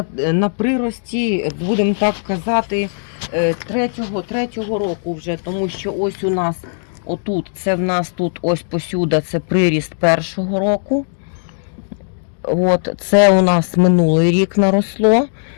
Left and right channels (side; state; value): right; silent; 68 dB below the other